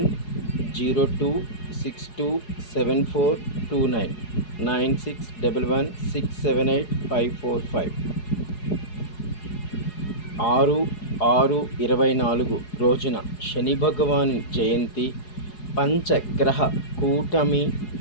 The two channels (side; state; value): right; late; 4.8 ms